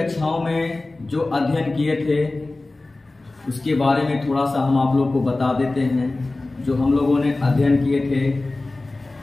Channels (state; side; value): quieter; right; 3.1 dB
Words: में जो अध्ययन किए थे उसके बारे में थोड़ा सा हम आप लोगों को बता देते हैं। जो हम लोगों ने अध्ययन किए थे